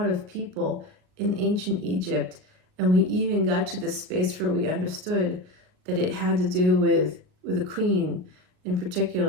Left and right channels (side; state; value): left; late; 38 ms